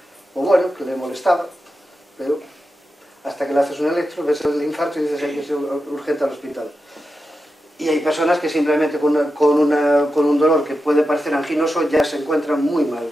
o bueno, que le molestaba, pero hasta que le haces un electro, ves el infarto y dices hay que ser urgente al hospital. Y hay personas que simplemente con un dolor que puede parecer anginoso ya se encuentran muy mal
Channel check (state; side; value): normal; both; correlation 0.90